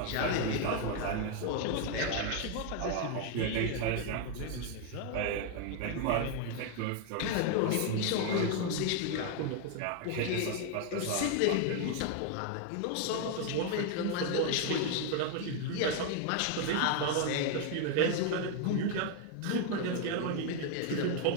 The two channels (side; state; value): both; different; correlation 0.01